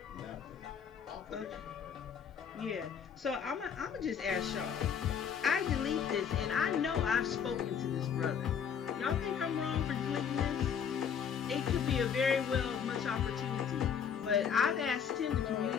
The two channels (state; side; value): quieter; right; 7.5 dB